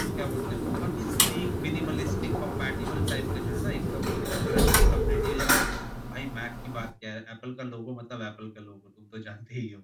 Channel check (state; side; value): identical; both; correlation 1.00